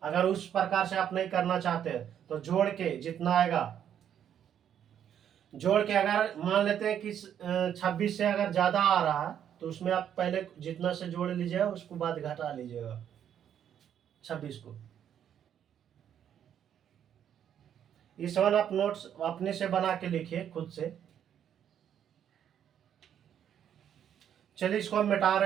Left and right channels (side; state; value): left; quieter; 9.4 dB